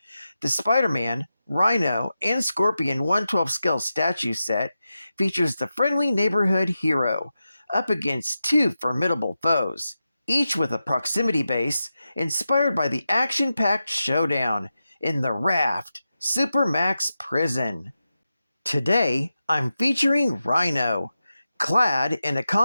The Spider-Man, Rhino, and Scorpion 1/12 scale statue set features the friendly neighborhood hero up against two formidable foes, each with a proximity base inspired by the action-packed showdown in the Raft Supermax Prison. Today, I'm featuring Rhino, clad in a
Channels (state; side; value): inverted; both; correlation -0.91